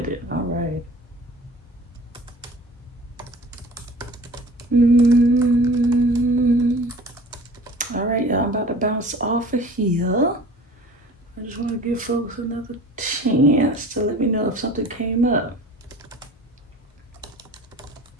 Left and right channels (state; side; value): normal; both; correlation 0.43